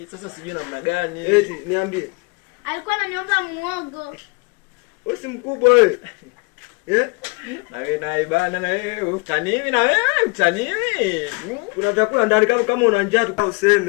Sasa sijui namna gani. Eti niambie. Alikuwa ananiomba muogo. Wewe si mkubwa wewe. Na wewe naye bana na wewe utaniwi na wewe utaniwi. Kuna vyakula ndani kama una njaa tu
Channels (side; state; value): right; quieter; 30.2 dB